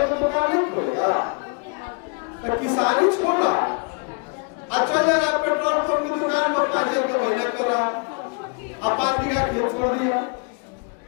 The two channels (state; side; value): quieter; right; 34.4 dB